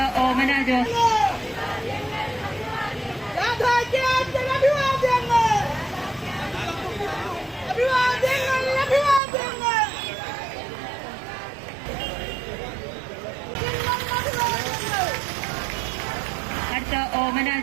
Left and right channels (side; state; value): left; drops out; at 9.2 s